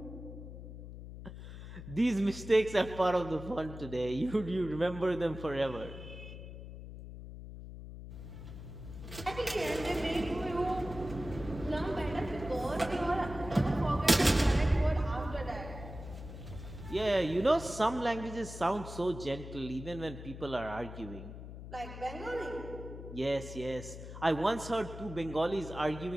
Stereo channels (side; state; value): left; noise; hum, 11 dB below the sound